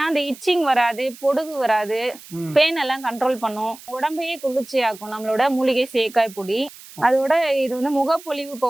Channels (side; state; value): right; noise; hiss, 19 dB below the sound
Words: அந்த இச்சிங் வராது, பொடுகு வராது, பெயின் எல்லாம் கண்ட்ரோல் பண்ணும், உடம்பையே குளிர்ச்சி ஆக்கும் நம்மளோட மூலிகை சேக்காய் பொடி. அதோட இது வந்து முகப்பொலிவு